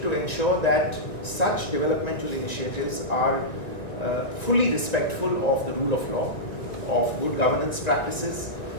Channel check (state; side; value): late; right; 1.9 ms